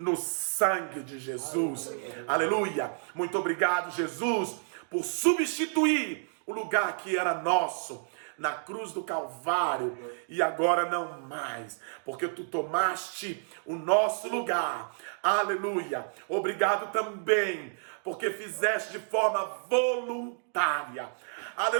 sangue de Jesus. Aleluia! Muito obrigado, Jesus, por substituir o lugar que era nosso na cruz do Calvário, e agora não mais, porque tu tomaste o nosso lugar. Aleluia! Obrigado também, porque fizeste de forma voluntária.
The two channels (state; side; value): silent; left; digital silence